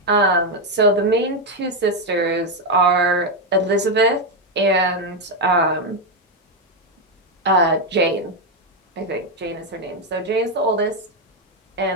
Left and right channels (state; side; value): normal; both; correlation 0.06